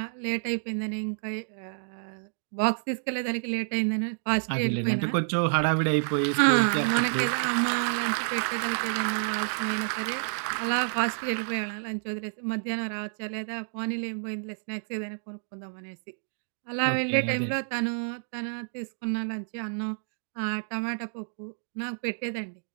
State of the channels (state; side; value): silent; left; digital silence